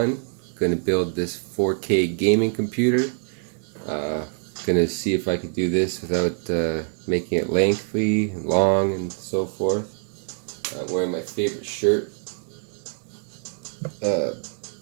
Gonna build this 4K gaming computer. Gonna see if I could do this without making it lengthy and long and so forth. I'm wearing my favorite shirt.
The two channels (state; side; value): silent; left; 60 dB below the other